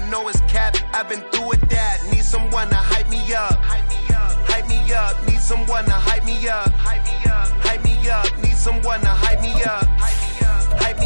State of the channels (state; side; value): inverted; both; correlation -1.00